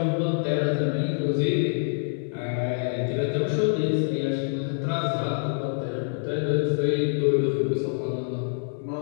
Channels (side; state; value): right; silent; 57 dB below the other